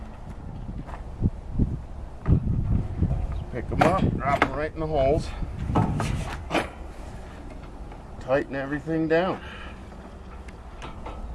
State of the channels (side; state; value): both; identical; correlation 1.00